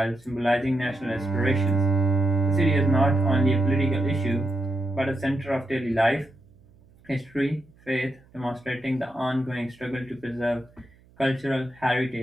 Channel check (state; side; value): noise; right; hum, 29 dB below the sound